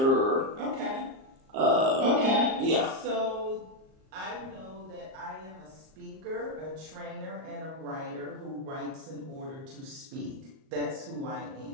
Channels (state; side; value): late; left; 38 ms